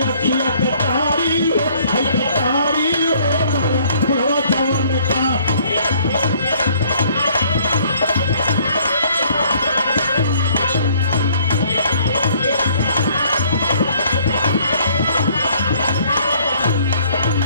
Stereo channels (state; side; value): inverted; both; correlation -0.60